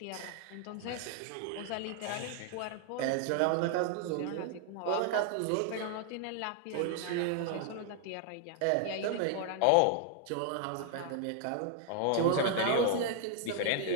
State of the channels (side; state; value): both; different; correlation 0.00